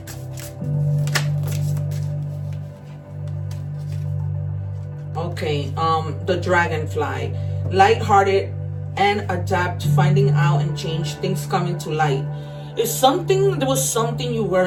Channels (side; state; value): both; identical; correlation 1.00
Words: Okay, the dragonfly. Light-hearted and adapt, finding out and change, things coming to light. There was something you